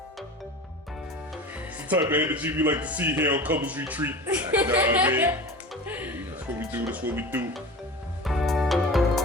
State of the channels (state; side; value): normal; both; correlation 0.33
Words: It's the type of energy we like to see here on Couples Retreat. You know what I mean? That's what we do. That's what we do.